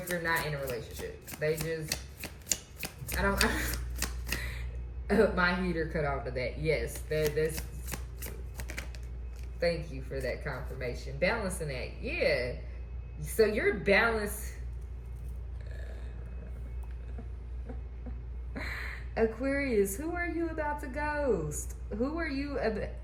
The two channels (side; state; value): both; identical; correlation 1.00